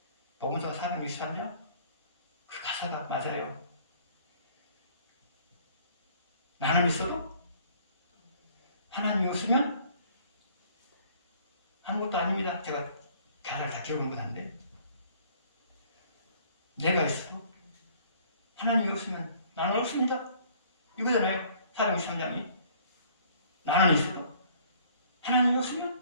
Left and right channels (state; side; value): inverted; both; correlation -0.57